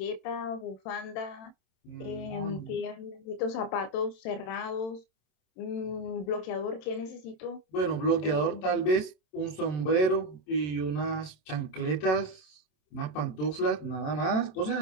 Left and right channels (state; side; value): late; right; 27 ms